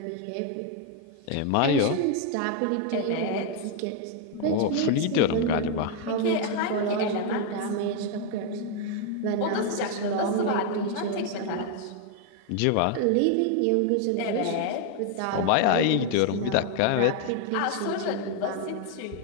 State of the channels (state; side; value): different; both; correlation 0.01